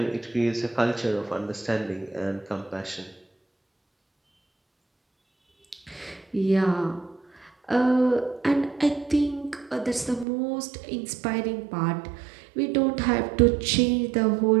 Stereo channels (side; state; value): left; drops out; at 10.2 s